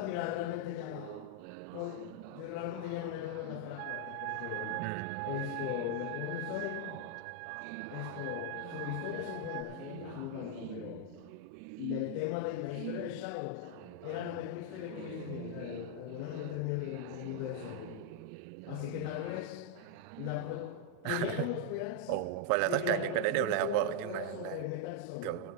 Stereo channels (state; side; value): different; both; correlation 0.00